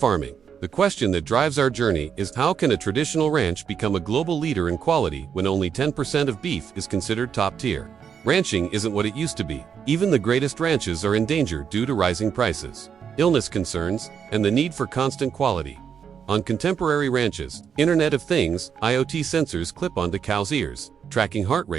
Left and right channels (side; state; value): left; quieter; 7.4 dB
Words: The question that drives our journey is, how can a traditional ranch become a global leader in quality when only 10% of beef is considered top tier? Ranching isn't what it used to be. Even the greatest ranches are in danger due to rising prices, illness concerns, and the need for constant quality. On contemporary ranches, Internet of Things, IoT sensors clip onto cows' ears, tracking heart